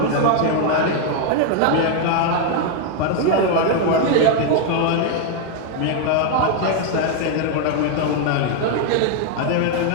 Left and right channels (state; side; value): different; both; correlation 0.01